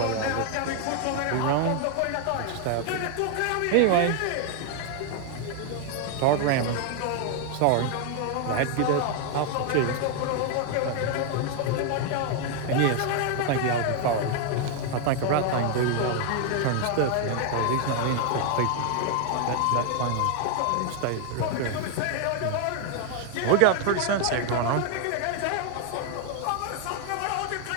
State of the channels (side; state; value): both; different; correlation 0.00